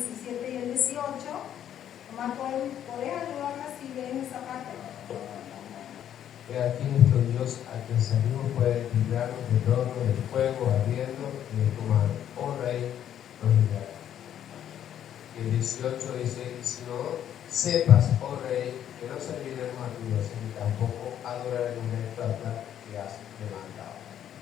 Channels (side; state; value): right; quieter; 10.3 dB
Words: y el 18, nomás podés ayudarme si ven esa parte. He aquí nuestro Dios, a quien servimos, puede librarnos del horno del fuego ardiendo y del comando. Oh Rey, nos librará. Y el 18 dice, si no sepas, oh Rey,